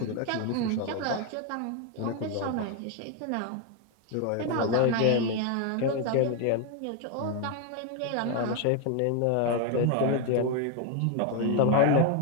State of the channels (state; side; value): different; both; correlation 0.01